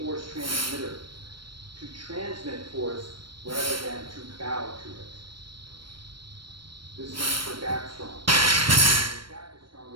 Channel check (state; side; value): late; left; 0.73 ms